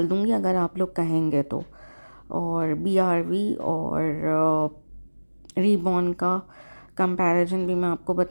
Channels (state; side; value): inverted; both; correlation -1.00